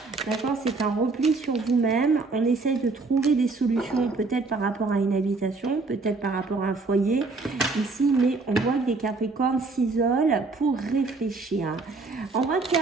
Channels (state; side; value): quieter; left; 3.8 dB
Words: D'accord? C'est un repli sur vous-même. On essaie de trouver des solutions, peut-être par rapport à une habitation, peut-être par rapport à un foyer ici, mais on voit que les Capricornes s'isolent pour réfléchir. On voit qu'il